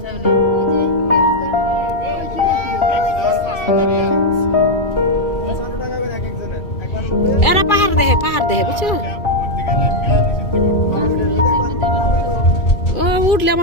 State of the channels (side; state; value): right; late; 2.4 ms